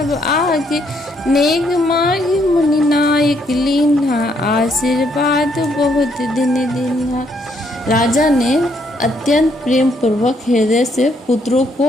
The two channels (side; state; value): both; normal; correlation 0.71